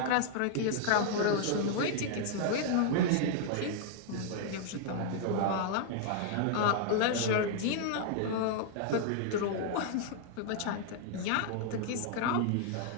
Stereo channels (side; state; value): both; different; correlation 0.00